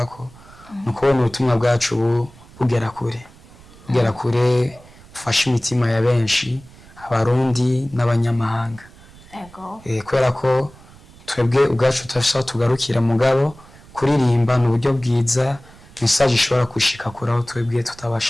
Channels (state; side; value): noise; right; rumble, 23 dB below the sound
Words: nukubona ubutumwa bwacu bugera kure ufasha imitima ya benshi abarundi n'abanyamahanga kubera ko twebwe ubwacu tutafise aho tugarukira mugabo kuririmba ni uburyo bwiza message ishobora gushika kure aho twebwe